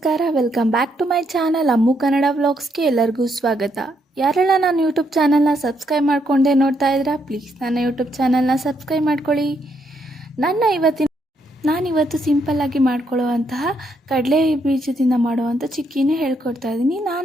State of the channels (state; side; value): normal; both; correlation 0.75